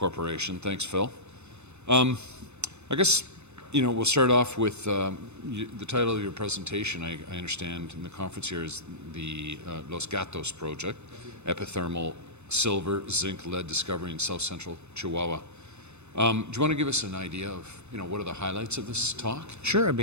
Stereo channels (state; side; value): late; left; 0.81 ms